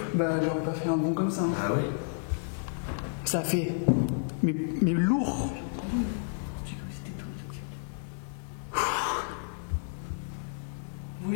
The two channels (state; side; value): silent; right; digital silence